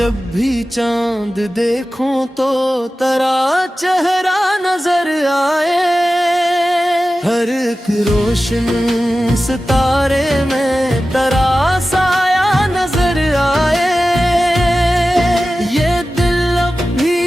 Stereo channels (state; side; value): normal; both; correlation 0.95